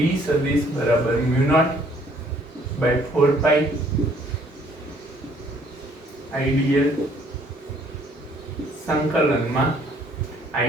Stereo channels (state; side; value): normal; both; correlation 0.62